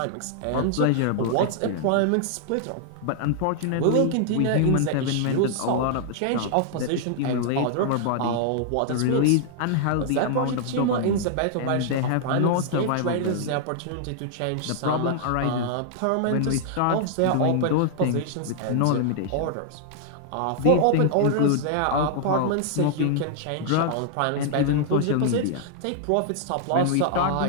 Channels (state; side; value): different; both; correlation 0.00